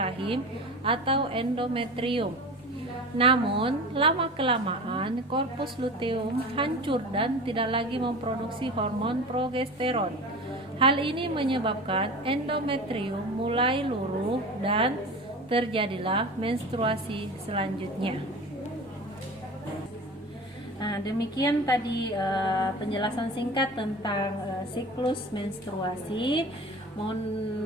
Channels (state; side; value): normal; both; correlation 0.34